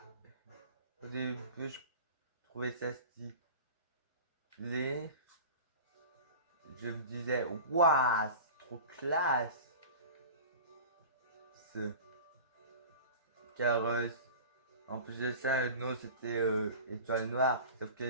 au début, je trouvais ça stylé. Je me disais, waouh, c'est trop classe. Car en plus de ça, nous c'était étoile noire. Sauf que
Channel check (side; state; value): both; inverted; correlation -0.36